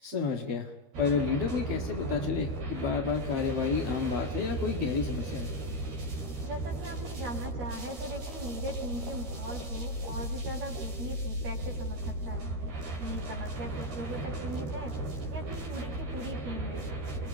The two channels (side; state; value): left; late; 13 ms